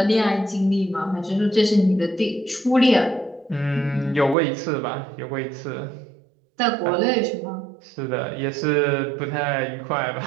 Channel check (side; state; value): left; drops out; at 4.4 s